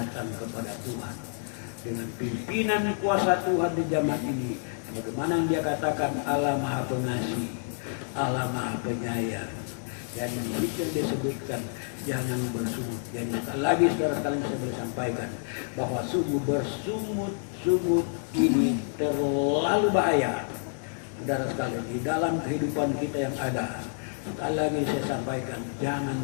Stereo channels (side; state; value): right; silent; digital silence